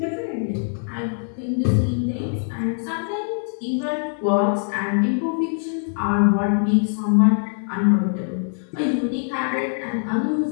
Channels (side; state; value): right; silent; digital silence